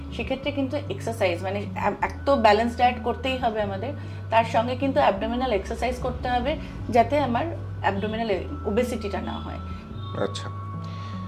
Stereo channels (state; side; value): identical; both; correlation 1.00